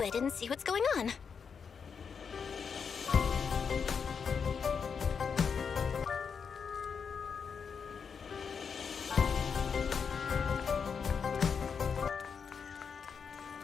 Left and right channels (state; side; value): quieter; right; 6.2 dB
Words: it and see what's going on.